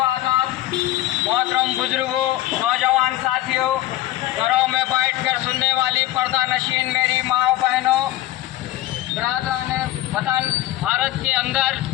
मोहतरम बुजुर्गों, नौजवान साथियों, घरों में बैठकर सुनने वाली पर्दा नशीन मेरी माओ बहनों, बरादरान वतन, भारत के अंदर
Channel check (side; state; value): right; quieter; 15.4 dB